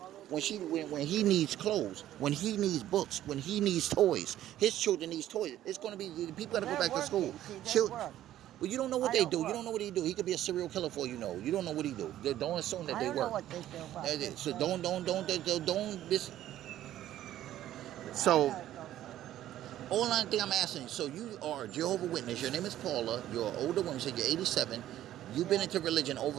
when he needs clothes, when he needs books, when he needs toys. His children needs toys. It's going to be, people got to go back to school. Well, you don't know what they do. You don't know what he do. He could be a serial killer for all you know. You don't know what he do. Don't assume that they work. I don't know what they do. So So all I think I'm asking, so you are a Jehovah Witness. Your name is Paula. You're an older woman. You said you're 87. You've been into religion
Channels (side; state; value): left; quieter; 12.8 dB